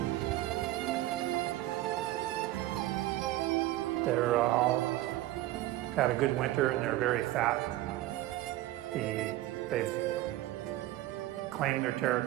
They're all had a good winter and they're very fat. They've claimed their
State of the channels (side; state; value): left; quieter; 15.9 dB